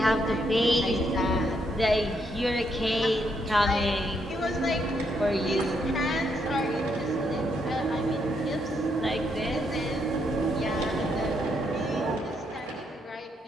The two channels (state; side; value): normal; both; correlation 0.76